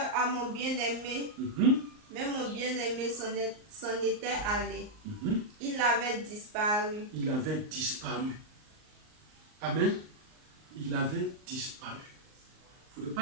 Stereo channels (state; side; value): late; left; 38 ms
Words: à mon bien-aimé. Mais mon bien-aimé s'en était allé. Il avait disparu. Il avait disparu. Amen. Il avait disparu. Il ne